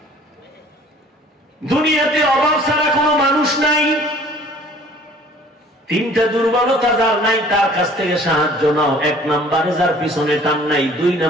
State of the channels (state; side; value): normal; both; correlation 0.52